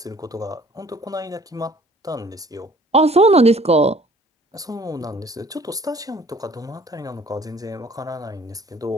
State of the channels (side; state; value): both; normal; correlation 0.54